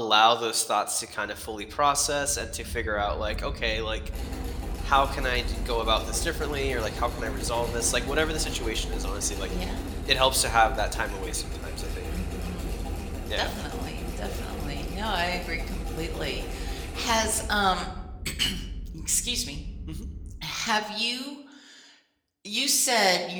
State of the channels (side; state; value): both; identical; correlation 1.00